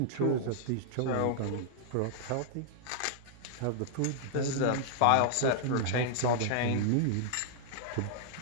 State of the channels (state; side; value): different; both; correlation -0.01